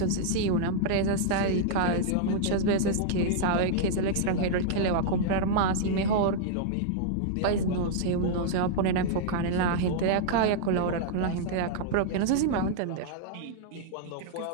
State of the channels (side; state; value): both; different; correlation -0.01